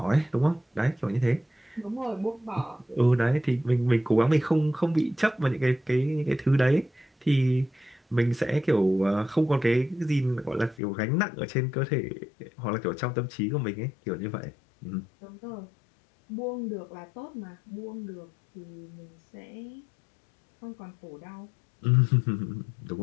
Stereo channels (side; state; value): right; drops out; at 10.8 s